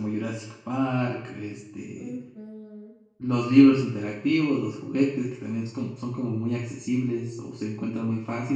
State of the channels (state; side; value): identical; both; correlation 1.00